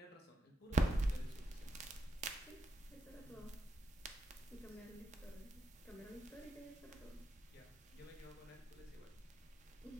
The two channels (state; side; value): normal; both; correlation 0.83